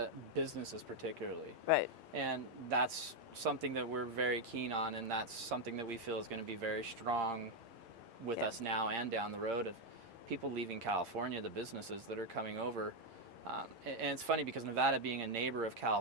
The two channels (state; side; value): late; left; 8.7 ms